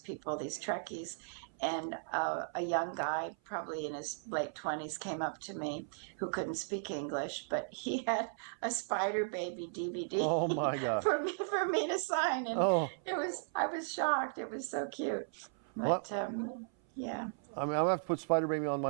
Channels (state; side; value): silent; left; 54 dB below the other